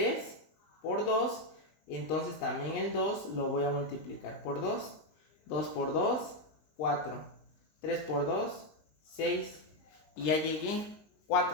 por 2, entonces también el 2 lo voy a multiplicar por 2. 2 por 2, 4. 3 por 2, 6. Y ya llegué,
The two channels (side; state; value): right; late; 19 ms